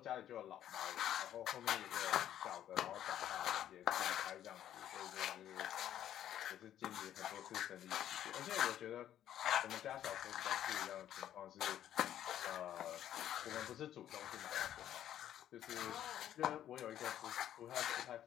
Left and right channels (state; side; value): quieter; right; 11.3 dB